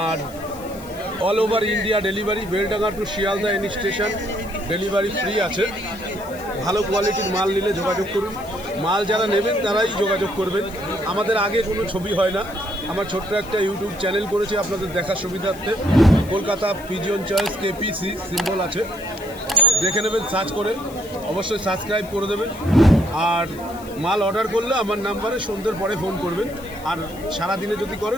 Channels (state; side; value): noise; left; hiss, 20 dB below the sound